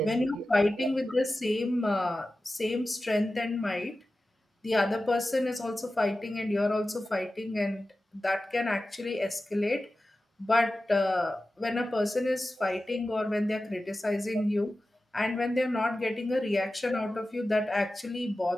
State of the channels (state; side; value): normal; both; correlation 0.94